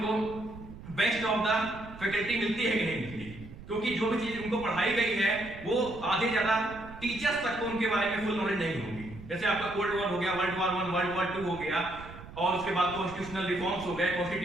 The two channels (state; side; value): noise; right; rumble, 15 dB below the sound